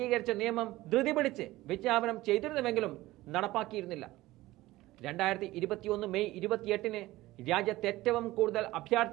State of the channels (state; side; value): quieter; left; 17.8 dB